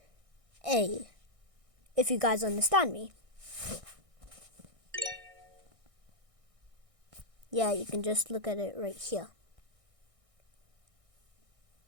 a, if you guys understand me. Yeah, you can just look at it right here.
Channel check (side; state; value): left; late; 1.6 ms